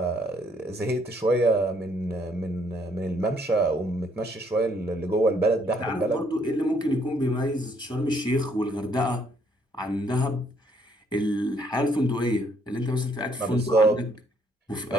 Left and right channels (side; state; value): both; normal; correlation 0.68